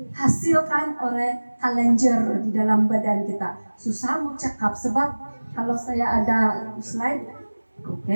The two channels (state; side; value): inverted; both; correlation -1.00